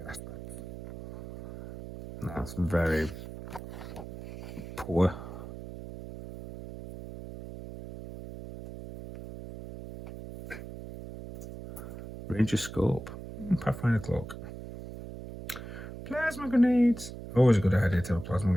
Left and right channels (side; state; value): right; noise; hum, 11 dB below the sound